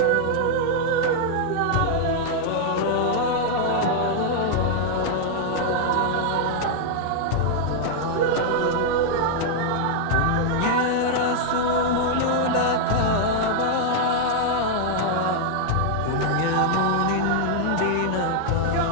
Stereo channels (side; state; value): both; different; correlation -0.01